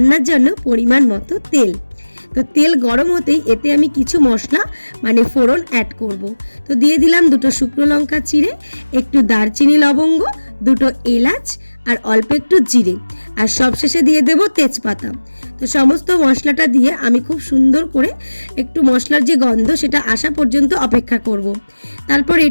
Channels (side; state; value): both; inverted; correlation -1.00